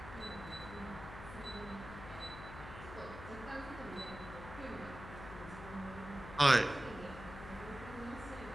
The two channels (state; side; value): noise; left; hum, 12 dB below the sound